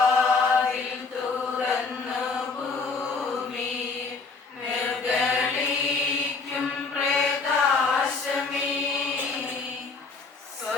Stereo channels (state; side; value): quieter; right; 4.4 dB